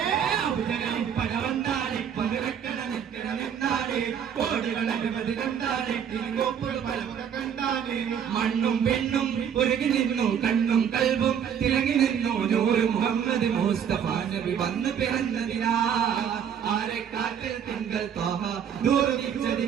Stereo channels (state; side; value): quieter; left; 8.2 dB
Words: അബുജകലി പരവന്താടി മരവെക്കര നിന്നാടി കോടികളെ കണ്ടാലെ കോപ്പുകൾ പലവുകൾ കണ്ടാലേ മണ്ണും പെണ്ണും ഒരുങ്ങി നിന്നു കണ്ണും കൽബും തിളങ്ങി നിന്നു നൂറ് മുഹമ്മദ് മുസ്തഫ നബി വന്നു പിറന്നതിനാ ആരെ കാറ്റിൽ തിങ്കൾ തോഹ